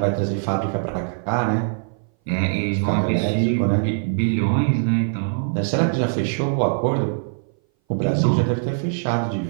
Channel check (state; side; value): silent; left; 59 dB below the other